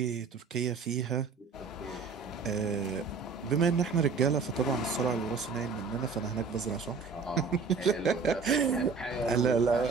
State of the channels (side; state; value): left; quieter; 5.0 dB